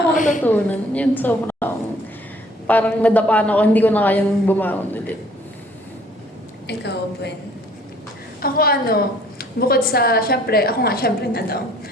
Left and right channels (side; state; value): both; normal; correlation 0.58